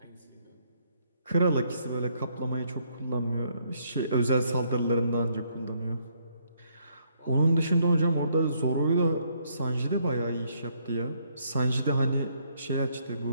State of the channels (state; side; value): inverted; both; correlation -0.71